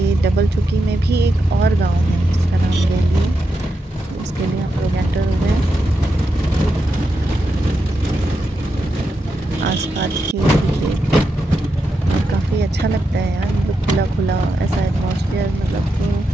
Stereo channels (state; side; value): normal; both; correlation 0.86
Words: डबल चौकी में भी एक और गांव है जिसका नाम गैली है, उसके लिए हम लोग एंटर हो गए हैं। आसपास खेत और काफ़ी अच्छा लगता है यार, मतलब खुला खुला ऐसा एटमॉस्फेयर, मतलब तो